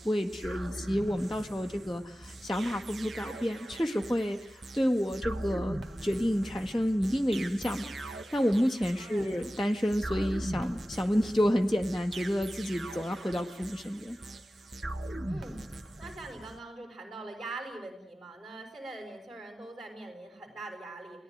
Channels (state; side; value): normal; both; correlation 0.95